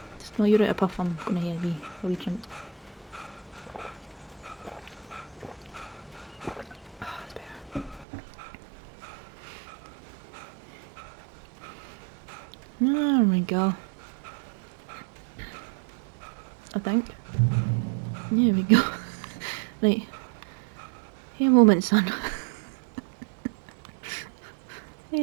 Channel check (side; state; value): left; drops out; at 8.1 s